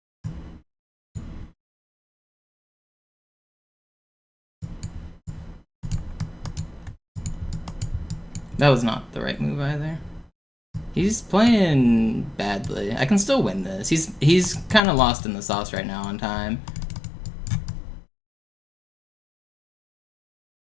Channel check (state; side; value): drops out; right; at 14.8 s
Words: That was not the right move either. He's playing badly. I can still win this. He's kind of lost in the sauce right now on time.